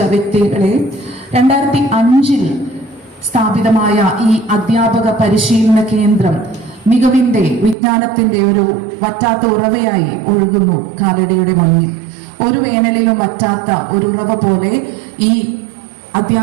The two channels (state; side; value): drops out; left; at 7.8 s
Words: വ്യക്തികളെ, 2005 സ്ഥാപിതമായ ഈ അധ്യാപക പരിശീലന കേന്ദ്രം മികവിന്റെ, വിജ്ഞാനത്തിന്റെ ഒരു വറ്റാത്ത ഉറവയായി ഒഴുകുന്നു കാലടിയുടെ മണ്ണിൽ. ഒരു വേനലിലും വറ്റാത്ത ഒരു ഉറവ പോലെ ഈ